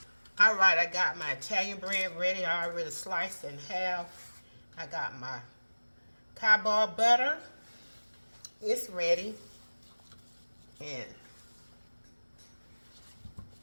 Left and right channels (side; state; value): both; inverted; correlation -1.00